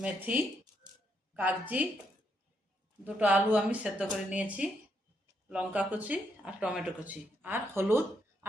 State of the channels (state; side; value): normal; both; correlation 0.77